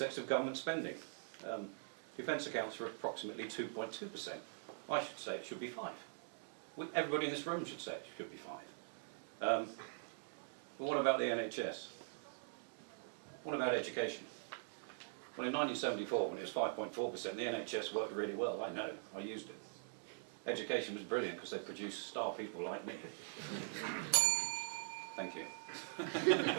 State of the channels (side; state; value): left; silent; digital silence